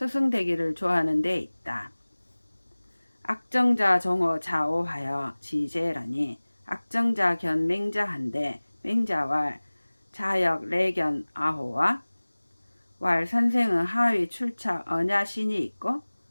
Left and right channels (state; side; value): inverted; both; correlation -1.00